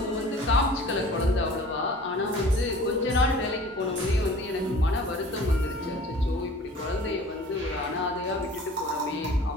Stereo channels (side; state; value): both; normal; correlation 0.46